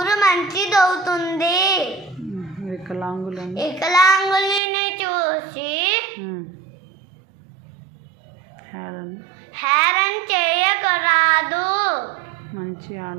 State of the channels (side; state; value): left; drops out; at 4.6 s